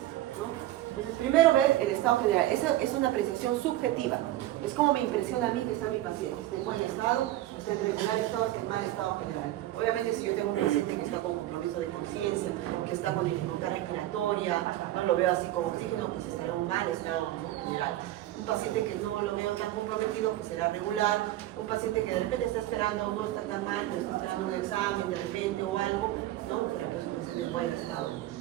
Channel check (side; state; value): left; quieter; 14.8 dB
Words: ¿no? Entonces, primero ver el estado general. Esa es una apreciación subjetiva. Es como me impresiona a mí que está mi paciente. Está en buen estado, está en regular estado, está en mal estado general. Obviamente, si yo tengo un paciente que está con compromiso de conciencia, que está con dificultad respiratoria, no lo veo así con oxígeno, pues estará en un mal estado, ¿no? General. Un paciente que no lo veo tan comprometido, pues será regular. Un paciente que de repente está esperando, no está tan mal, pero está esperando un examen de repente o algo, ¿no? Será pues un paciente en buen estado